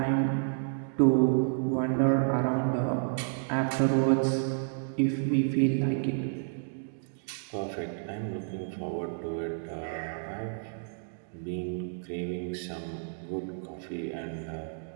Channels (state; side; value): silent; left; digital silence